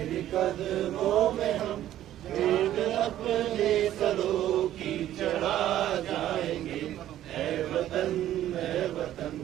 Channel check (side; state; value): left; quieter; 12.6 dB